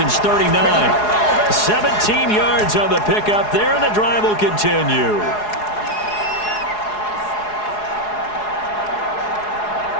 39. 17 yards on the pickup there, and the drive will continue.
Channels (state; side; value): late; right; 4.8 ms